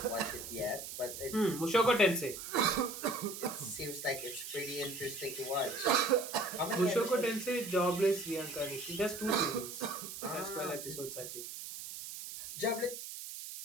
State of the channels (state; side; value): noise; right; hiss, 9 dB below the sound